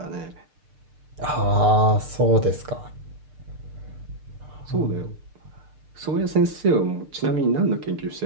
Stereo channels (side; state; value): left; late; 6.7 ms